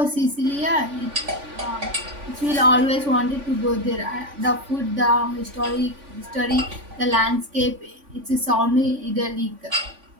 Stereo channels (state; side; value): late; left; 3.5 ms